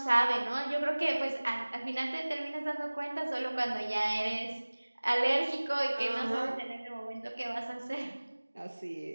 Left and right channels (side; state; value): both; inverted; correlation -1.00